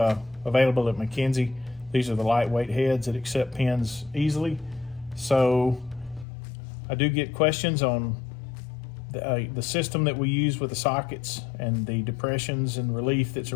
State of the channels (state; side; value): drops out; right; at 6.2 s